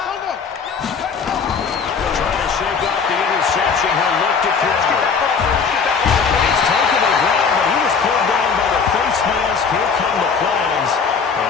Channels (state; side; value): quieter; right; 5.7 dB